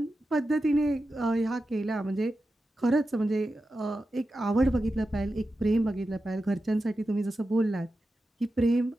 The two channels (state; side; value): normal; both; correlation 0.91